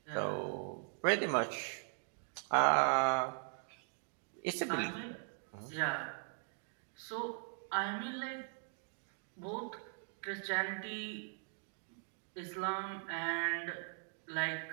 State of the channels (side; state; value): left; silent; digital silence